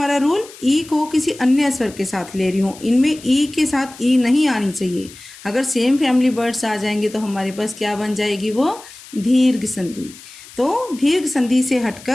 रूल, ई को किसी अन्य स्वर के साथ ले रही हूँ। इनमें ई के साथ ई नहीं आनी चाहिए। अगर सेम फैमिली वर्ड्स आ जाएंगे तो हमारे पास क्या बन जाएगी? वो दीर्घ संधि। तो दीर्घ संधि से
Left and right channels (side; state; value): left; noise; hiss, 19 dB below the sound